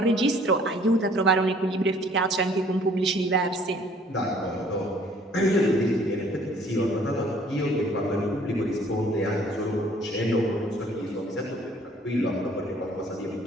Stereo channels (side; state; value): both; normal; correlation 0.57